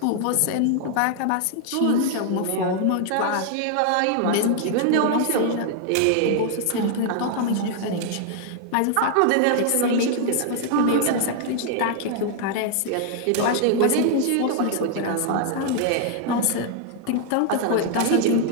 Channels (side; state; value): both; different; correlation 0.00